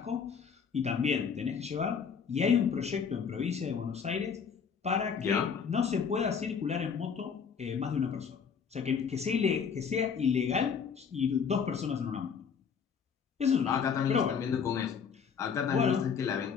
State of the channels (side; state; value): right; quieter; 6.5 dB